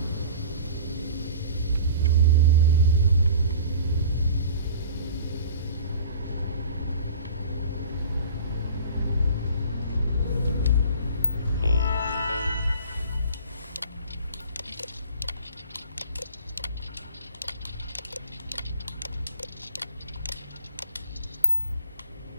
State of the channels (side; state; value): both; inverted; correlation -0.43